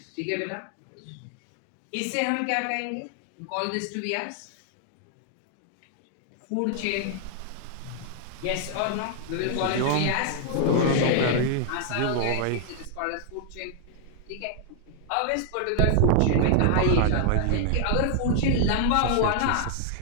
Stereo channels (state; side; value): different; both; correlation 0.00